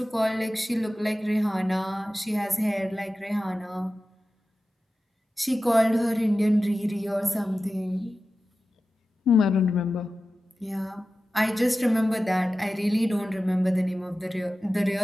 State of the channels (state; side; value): normal; both; correlation 0.94